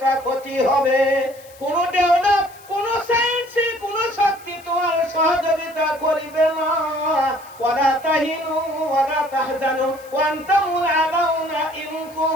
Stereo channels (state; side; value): noise; left; hiss, 24 dB below the sound